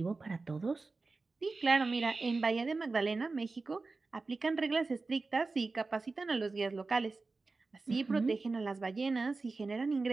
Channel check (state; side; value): quieter; left; 3.8 dB